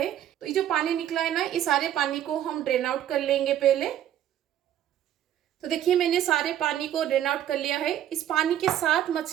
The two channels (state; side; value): quieter; left; 11.3 dB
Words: तो ये जो पानी निकला है ना, इस सारे पानी को हम ड्रेन आउट कर लेंगे पहले। तो देखिए मैंने सारे पानी को ड्रेन आउट कर लिया है। इस पानी के साथ